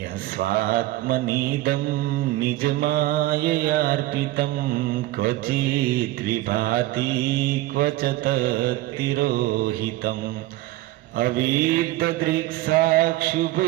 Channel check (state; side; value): quieter; left; 17.0 dB